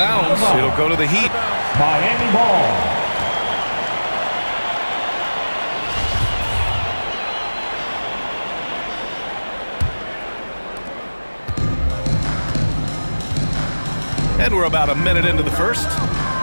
It'll go to the Heat. Miami ball. And we're about a minute into the first.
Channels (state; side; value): inverted; both; correlation -1.00